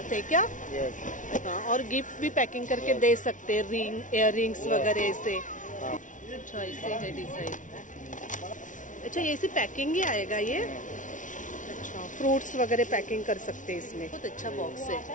है क्या? यस। हाँ, और गिफ्ट भी पैकिंग करके दे सकते हैं, रिंग, इयर रिंग्स वगैरह ऐसे। हाँ। अच्छा, ऐसे है डिजाइन। अच्छा, ये ऐसी पैकिंग ही आएगा ये? अच्छा, फ्रूट्स वगैरह पैकिंग कर सकते हैं इसमें। बहुत अच्छा बॉक्स है।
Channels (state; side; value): late; right; 0.37 ms